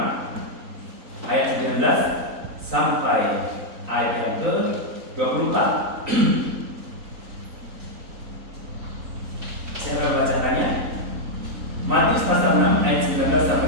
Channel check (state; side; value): late; left; 3.9 ms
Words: ayat 19 sampai ayat yang ke-24. Saya akan membacakannya. Matius pasal 6 ayat 19